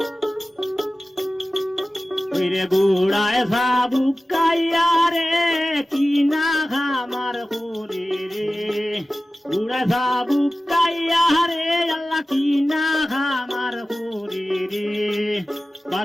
রে গুড়ায় সাবুকাইয়া রে কিনা খামার করে রে গুড়ায় সাবুকাইয়া রে আল্লাহ কিনা খামার করে রে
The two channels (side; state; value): both; normal; correlation 0.95